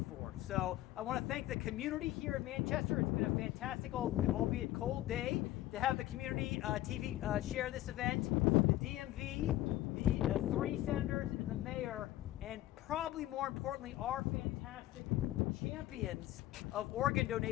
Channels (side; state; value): right; quieter; 15.2 dB